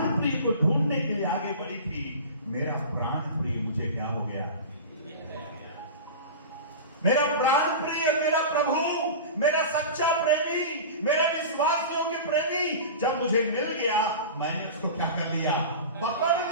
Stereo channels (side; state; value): both; inverted; correlation -0.31